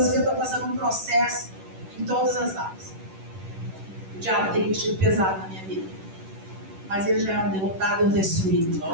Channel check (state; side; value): late; left; 10 ms